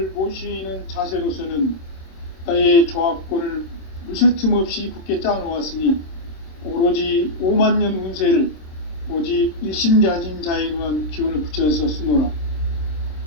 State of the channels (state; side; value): late; right; 26 ms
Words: 모시는 자세로서는 나의 조화권을 물샐 틈 없이 굳게 짜놓았으니 오로지 5만 년 운세를 오직 일심자진 자에 의한 기운을 붙여서 쓰노라.